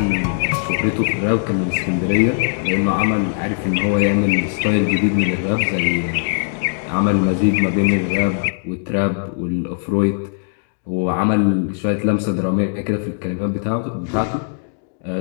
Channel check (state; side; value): silent; right; digital silence